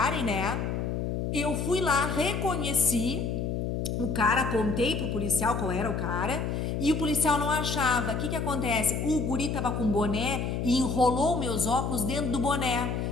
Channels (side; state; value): left; noise; hum, 1 dB below the sound